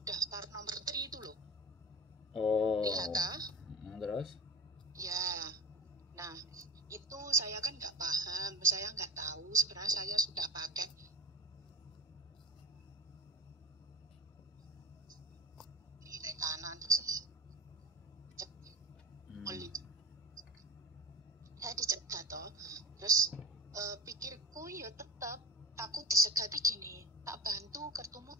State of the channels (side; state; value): both; normal; correlation 0.32